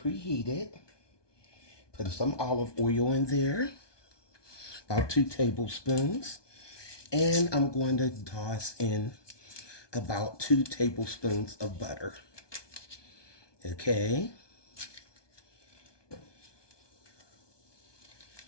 Put some olive oil in there. About 2 tablespoons. And I'm going to toss in about 2 tablespoons of butter. Okay.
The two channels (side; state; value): right; late; 1.2 ms